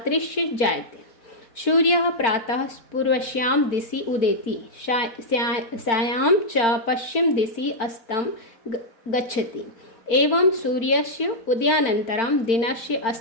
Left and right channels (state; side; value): late; right; 4.4 ms